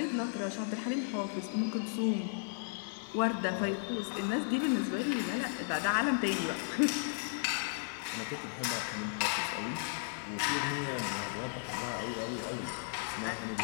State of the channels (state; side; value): silent; right; 54 dB below the other